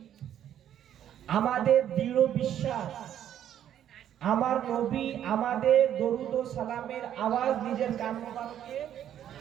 আমাদের দৃঢ় বিশ্বাস আমার নবী আমাদের দরুদ ও সালামের আওয়াজ নিজের কান মোবারকে,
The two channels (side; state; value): left; quieter; 10.5 dB